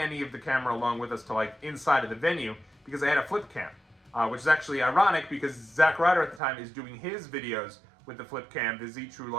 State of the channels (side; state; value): left; drops out; at 6.4 s